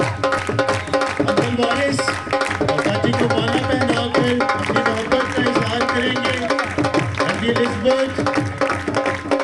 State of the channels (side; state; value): both; identical; correlation 1.00